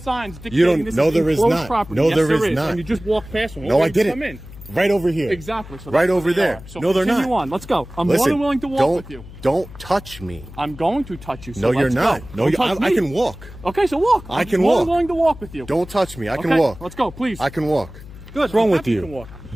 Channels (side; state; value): left; noise; hum, 16 dB below the sound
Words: dictating You don't. this No, is there is enclosed not. property. No, Yes, there there is not. And you just walk past them. No, I didn't. Come in. Right over here. Exactly. So right that's over where they there. are. So No, they're continue not. on. Let's go. I'm more than willing to walk with you. Don't touch me. I'm going to touch you. So No, you're let's not. Go. No, Don't touch I me. can walk. Okay, so walk. I can I'm more walk. than willing to walk with you. Don't touch me. I can Okay, walk. Let's go, please. I can walk. Good. What's wrong I'm with happy you you? can walk.